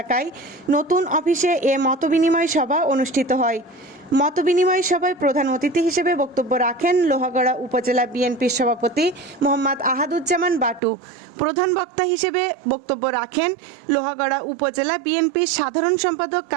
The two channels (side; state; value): left; drops out; at 10.8 s